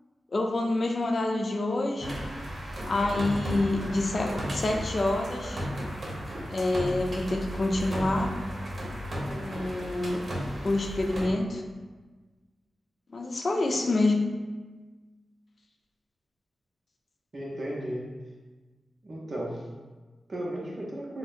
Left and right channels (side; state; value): both; normal; correlation 0.93